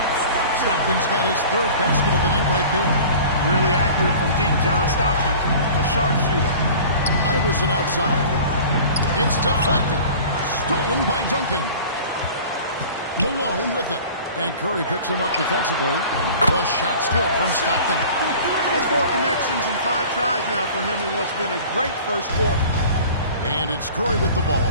Stockton's got his 3rd basket of the night right there. Really accurate from deep, John Stockton, a sharpshooter. Iverson outside. It's deflected. Stolen by Duncan. Malone with it. And Curry picks him up defensively. The shot's good from Stockton. That's 4 connections and 5 tries now for him in what's been a great first quarter. And it's Curry with the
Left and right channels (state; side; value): inverted; both; correlation -0.42